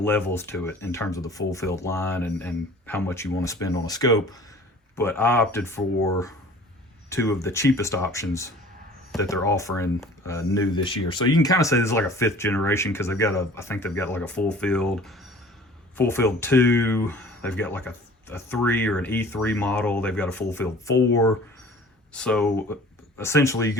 levels to it in terms of the FullField line and how much you want to spend on a scope. But I opted for 2 of the cheapest options that they're offering new this year. So you can kind of say this is like a 5th generation, because they've got I think they've got like a FullField 2. They've got like a 3 or an E3 model. They've got a FullField 4. So essentially you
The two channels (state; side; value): normal; both; correlation 0.47